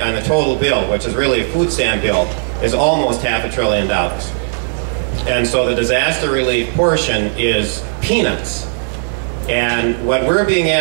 on the total bill, which is really a food stamp bill, is almost $500 billion. And so the disaster relief portion is peanuts. And what we're being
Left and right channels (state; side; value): silent; left; 68 dB below the other